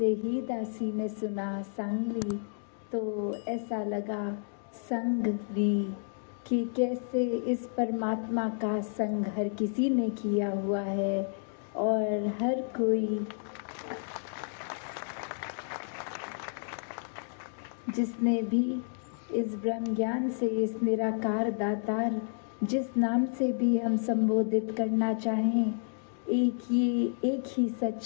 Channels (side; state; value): right; silent; digital silence